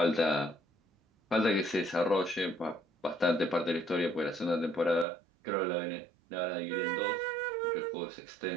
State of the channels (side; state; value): left; drops out; at 5.1 s